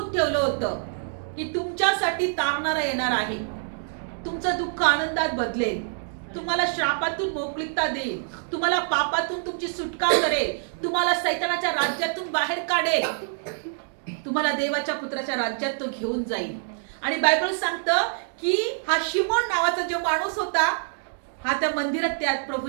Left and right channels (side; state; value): left; silent; digital silence